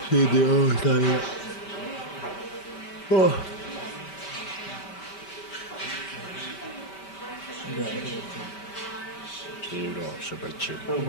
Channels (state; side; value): late; right; 5.1 ms